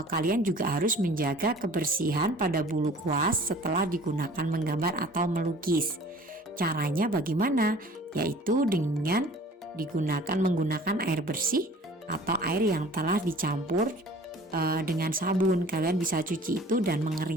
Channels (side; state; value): both; normal; correlation 0.48